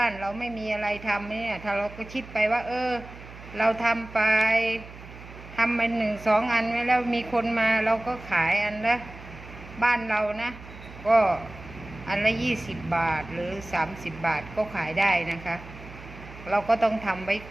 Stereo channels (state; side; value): noise; right; hum, 16 dB below the sound